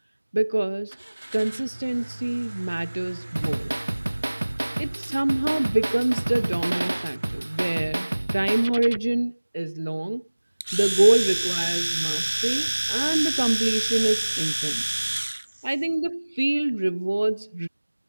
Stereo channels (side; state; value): both; inverted; correlation -1.00